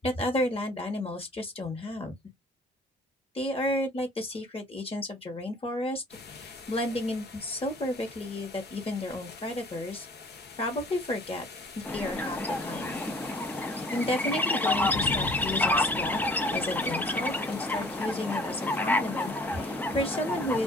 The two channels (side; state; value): both; normal; correlation 0.53